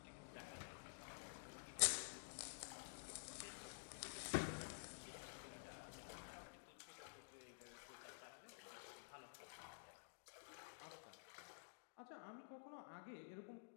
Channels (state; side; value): silent; right; digital silence